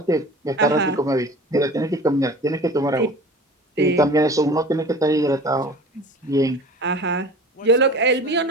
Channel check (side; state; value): both; normal; correlation 0.40